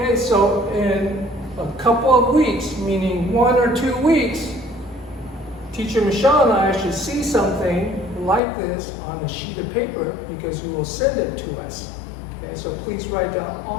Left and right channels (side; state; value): right; drops out; at 8.4 s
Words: so in a couple of weeks, meaning 1 or 2 weeks, Teacher Michelle and I should see something like this on a sheet of paper because you will send it to us. Okay, so please write down